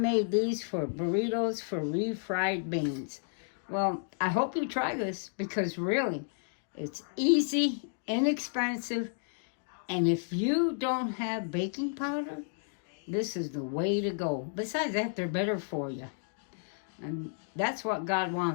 these for burritos for refried beans. Well, I hope you try this because really, it's easy, inexpensive, and if you don't have baking powder, this is the way to go. Besides that, they're better for you. And that's what God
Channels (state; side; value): silent; right; digital silence